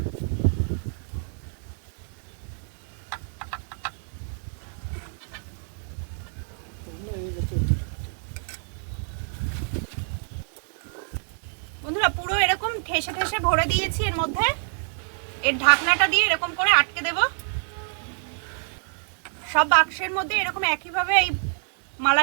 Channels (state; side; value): silent; left; digital silence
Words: বন্ধুরা পুরো এরকম ঠেসে ঠেসে ভরে দিয়েছি এর মধ্যে। এর ঢাকনাটা দিয়ে এরকম করে আটকে দেব। সব বাক্সের মধ্যে এরকম একইভাবে এই